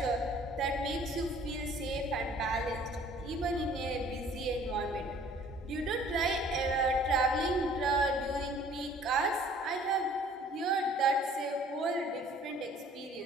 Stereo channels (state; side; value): normal; both; correlation 0.55